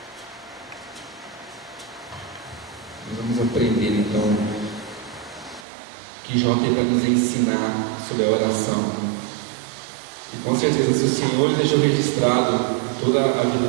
Nós vamos aprender então que Jó tem para nos ensinar sobre a oração. E com certeza, se o Senhor deixou registrado toda a vida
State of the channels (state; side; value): drops out; left; at 5.7 s